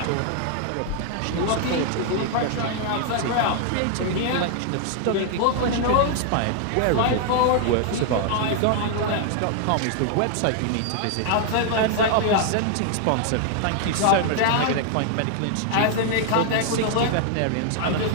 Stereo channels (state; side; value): different; both; correlation 0.00